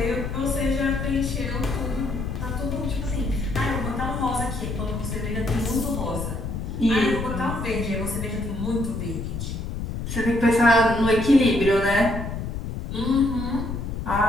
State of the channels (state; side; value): noise; left; rumble, 5 dB below the sound